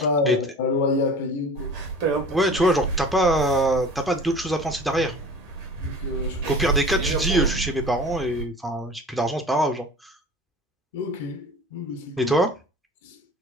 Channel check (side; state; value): both; normal; correlation 0.41